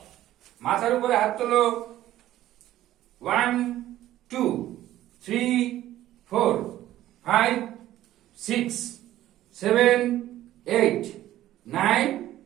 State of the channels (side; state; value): left; quieter; 13.8 dB